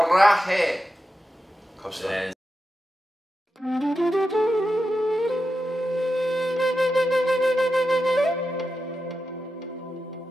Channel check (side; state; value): both; normal; correlation 0.90